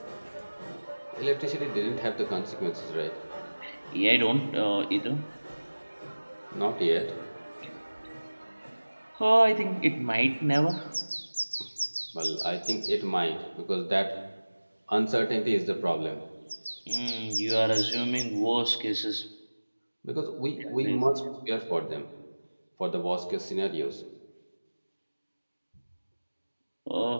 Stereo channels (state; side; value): inverted; both; correlation -1.00